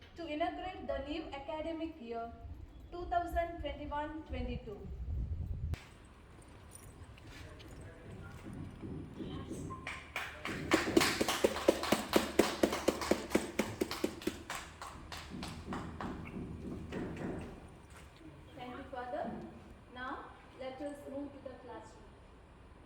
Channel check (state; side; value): identical; both; correlation 1.00